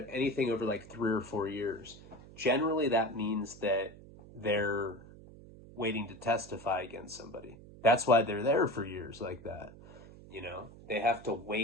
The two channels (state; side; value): noise; right; hum, 19 dB below the sound